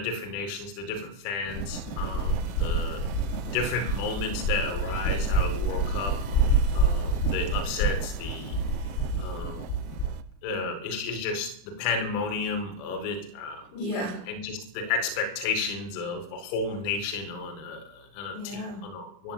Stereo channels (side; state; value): right; late; 40 ms